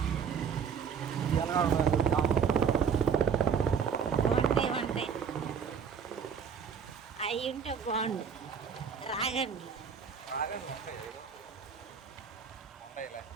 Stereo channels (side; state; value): left; quieter; 6.8 dB